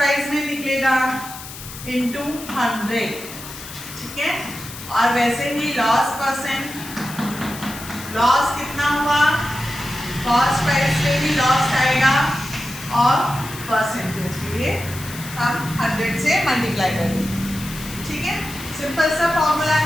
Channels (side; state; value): left; noise; hiss, 13 dB below the sound